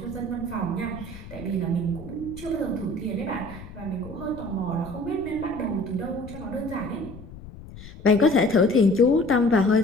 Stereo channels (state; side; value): noise; left; rumble, 15 dB below the sound